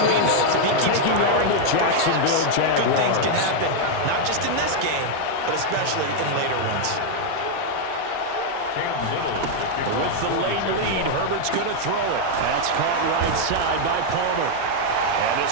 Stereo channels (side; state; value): both; different; correlation 0.00